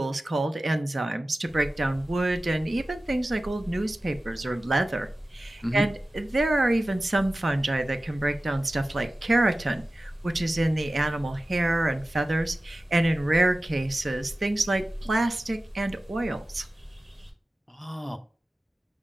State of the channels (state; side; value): normal; both; correlation 0.96